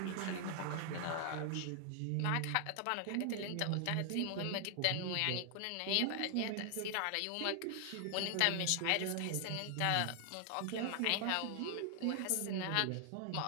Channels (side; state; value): both; different; correlation 0.00